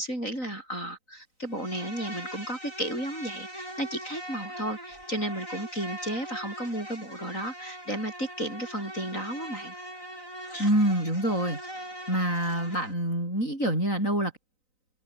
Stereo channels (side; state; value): right; late; 3.9 ms